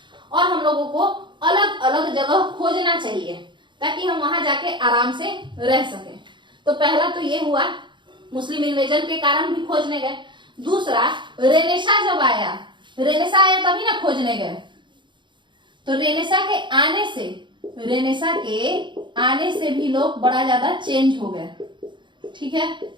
और हम लोगों को अलग अलग जगह खोजना चाहिए ताकि हम वहां जाके आराम से रह सके। तो पहला तो ये हुआ, मुस्लिम इन्वेजन के कारण भी खोजने गए। दूसरा, रेनेसा जब आया, रेनेसा आया तभी ना खोजने गए। तो रेनेसा के आने से भी लोग बड़ा ज्यादा चेंज हो गए। ठीक है,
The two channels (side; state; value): left; late; 0.23 ms